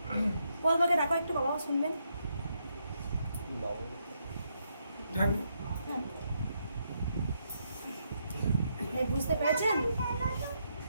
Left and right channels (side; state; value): both; inverted; correlation -0.79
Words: বলবাকে দেখো একটু, বাবাও শুনবেন। বুঝতে পেরেছেন?